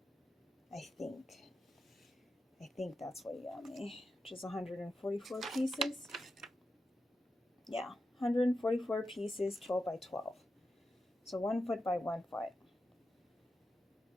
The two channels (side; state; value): both; normal; correlation 0.89